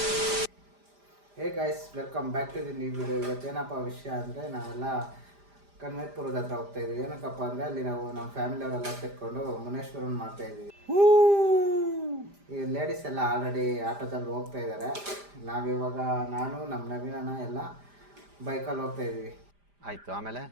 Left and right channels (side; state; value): left; late; 5.0 ms